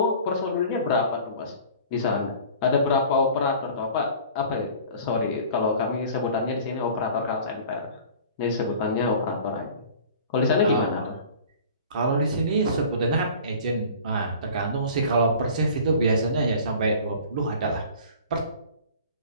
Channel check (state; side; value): inverted; both; correlation -0.44